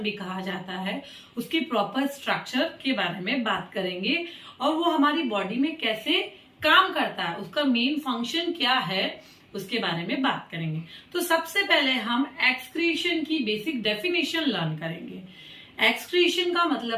भी कहा जाता है, उसकी प्रॉपर स्ट्रक्चर के बारे में बात करेंगे और वो हमारी बॉडी में कैसे काम करता है, उसका मेन फंक्शन क्या है, उसके बारे में बात करेंगे। तो सबसे पहले हम एक्सक्रीशन की बेसिक डेफिनेशन लर्न करेंगे। एक्सक्रीशन का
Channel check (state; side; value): identical; both; correlation 1.00